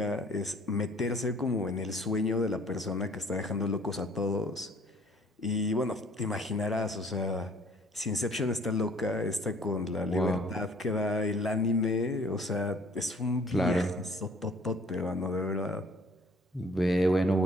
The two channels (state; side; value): normal; both; correlation 0.57